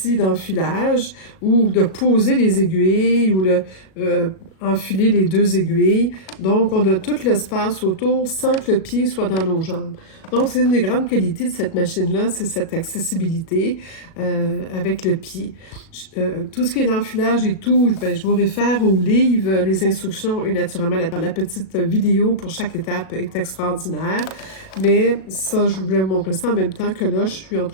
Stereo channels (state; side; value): late; right; 37 ms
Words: d'enfilage ou de poser les aiguilles ou enfiler les deux aiguilles. Donc, on a tout l'espace autour sans que le pied soit dans nos jambes. Donc, c'est une des grandes qualités de cette machine-là, c'est cette accessibilité avec le pied. Tout ce qui est l'enfilage et tout, je vous réfère au livre, les instructions et naturellement la petite vidéo pour chaque étape est extraordinaire. Mais ça, je voulais vous montrer ça en même temps que là, je suis en